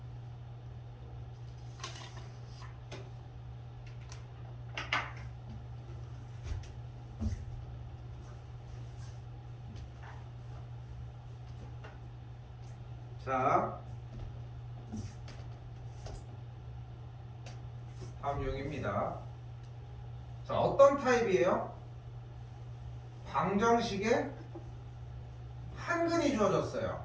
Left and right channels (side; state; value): both; identical; correlation 1.00